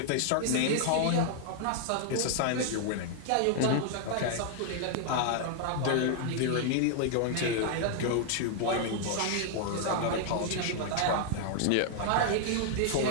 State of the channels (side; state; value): both; different; correlation -0.01